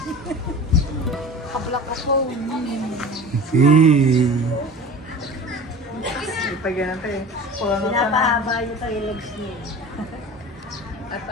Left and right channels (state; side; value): normal; both; correlation 0.37